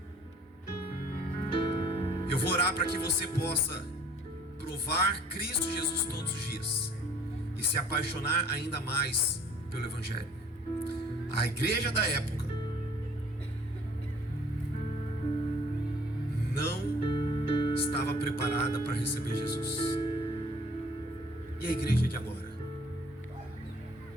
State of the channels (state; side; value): normal; both; correlation 0.54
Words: Eu vou orar para que você possa provar Cristo Jesus todos os dias e se apaixonar ainda mais pelo Evangelho. A igreja da época não estava preparada para receber Jesus. E a igreja de agora?